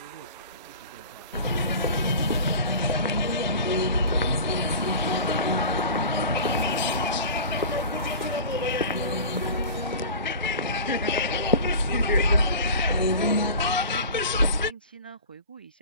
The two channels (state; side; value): inverted; both; correlation -0.36